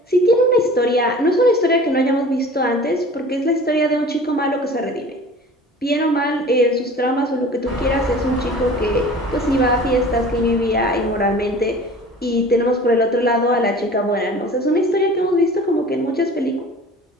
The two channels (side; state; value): both; normal; correlation 0.43